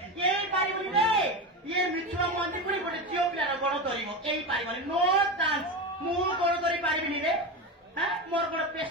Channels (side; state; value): both; normal; correlation 0.20